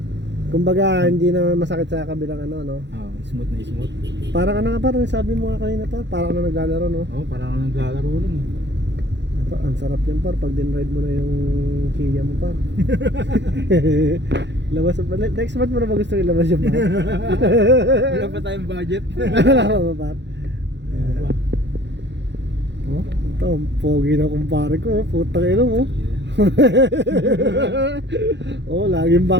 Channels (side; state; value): left; late; 0.52 ms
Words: Kumbaga hindi na masakit sa kabilang ano no. Oh, smooth na smooth. Parang ano nga par, sabi mo nga kanina par, parang ano naglalaro no. Oh, parang naglalaro lang. Ang sarap yan par pag din-ride mo na yung Kia mo par. Labas pa next month mo na ba gusto ilabas yung par? Wala pa tayong budget. Wala ba par? Oh, ito ang pogi na kumpare ko, putang ina mo. Oh, laging